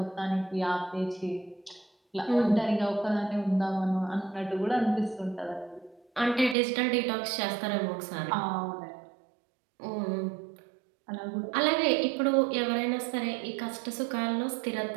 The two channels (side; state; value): left; drops out; at 6.6 s